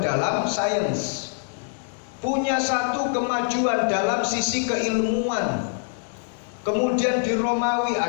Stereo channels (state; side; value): silent; right; digital silence